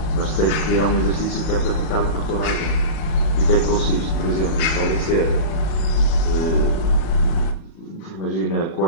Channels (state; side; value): late; right; 38 ms